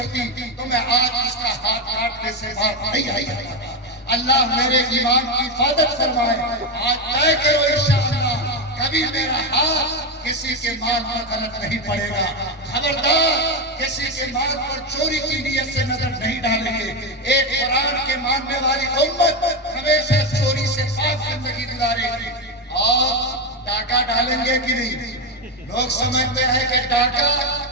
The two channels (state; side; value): normal; both; correlation 0.09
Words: تو میں آج اس کا ہاتھ کاٹنے سے باز نہیں آئی ہوتا. اللہ میرے ایمان کی حفاظت فرمائے. آج طے کرو انشاءاللہ کبھی میرا ہاتھ کسی کے مال پر غلط نہیں پڑے گا. خبردار کسی کے مال پر چوری کی نیت سے نظر نہیں ڈالیں گے. ایک قرآن کے ماننے والی امت ہمیشہ چوری سے پاک زندگی گزارے گی. اور ڈاکہ ڈالیں گے کہ نہیں؟ لوگ سمجھتے ہیں کہ ڈاکہ